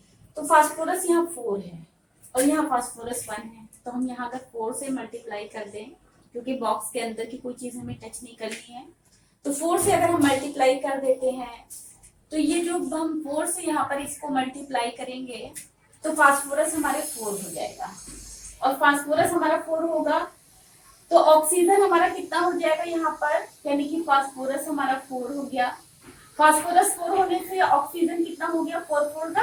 तो फास्फोरस यहाँ 4 है और यहाँ फास्फोरस 1 है, तो हम यहाँ अगर 4 से मल्टीप्लाई कर दें, क्योंकि बॉक्स के अंदर की कोई चीज हमें टच नहीं करनी है, तो 4 से अगर हम मल्टीप्लाई कर देते हैं, तो ये जो हम 4 से यहाँ पर इसको मल्टीप्लाई करेंगे, तो फास्फोरस हमारे 4 हो जाएगा, और फास्फोरस हमारा 4 होगा, तो ऑक्सीजन हमारा कितना हो जाएगा यहाँ पर, यानी कि फास्फोरस हमारा 4 हो गया। फास्फोरस 4 होने से ऑक्सीजन कितना हो गया 4 4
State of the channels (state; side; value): identical; both; correlation 1.00